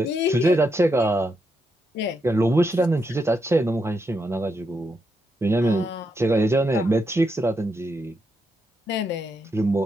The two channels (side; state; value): both; normal; correlation 0.82